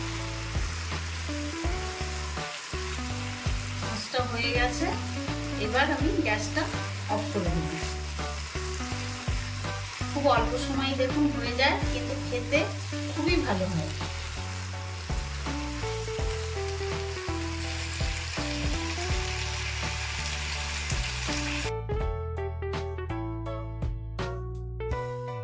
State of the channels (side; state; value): both; identical; correlation 1.00